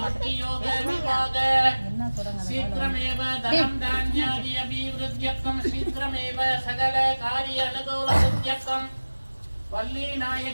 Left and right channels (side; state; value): both; inverted; correlation -1.00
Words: भक्ति योग विभाग शीघ्रमेव धनं धान्यादि अभिवृद्ध्यर्थम शीघ्रमेव सकल कार्य अनुकूल सिद्ध्यर्थम वल्ली